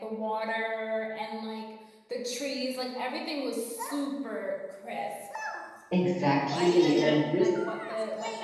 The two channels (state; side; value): identical; both; correlation 1.00